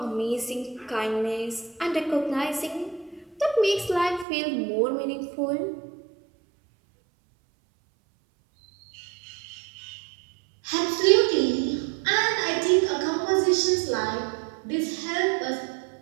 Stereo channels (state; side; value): drops out; left; at 4.2 s